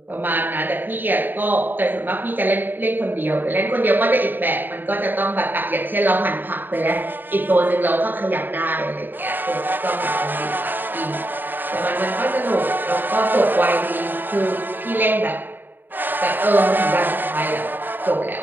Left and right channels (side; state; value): left; late; 0.092 ms